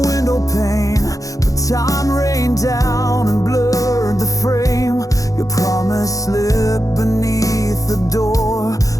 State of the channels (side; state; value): right; late; 0.17 ms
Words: pane, but time rained down and blurred the frame. Your promise slipped beneath the door,